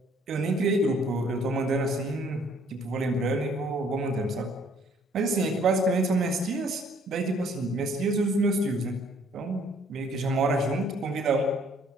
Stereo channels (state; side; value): normal; both; correlation 0.61